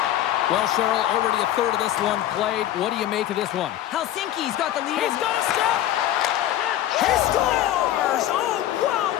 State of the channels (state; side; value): quieter; right; 12.8 dB